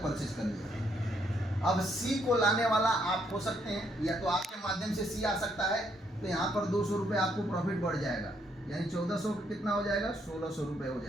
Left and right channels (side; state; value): both; normal; correlation 0.72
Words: परचेज कर लिया। अब सी को लाने वाला आप हो सकते हैं, या तो आपके माध्यम से सी आ सकता है, तो यहाँ पर 200 रुपये आपको प्रॉफिट बढ़ जाएगा, यानी 1400 कितना हो जाएगा, 1600 रुपये हो